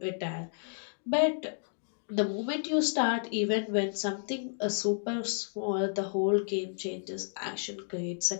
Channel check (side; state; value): right; silent; digital silence